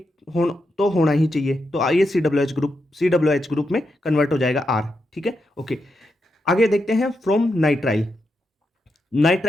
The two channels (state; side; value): normal; both; correlation 0.85